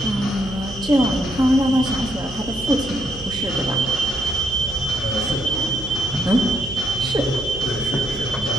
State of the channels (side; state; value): right; noise; hum, 16 dB below the sound